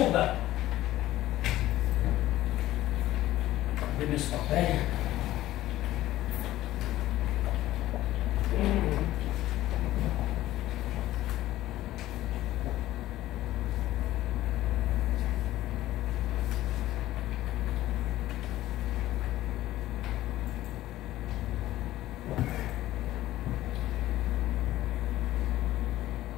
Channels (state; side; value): quieter; right; 15.1 dB